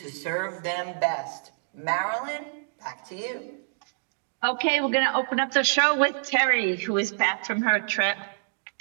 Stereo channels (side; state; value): left; silent; digital silence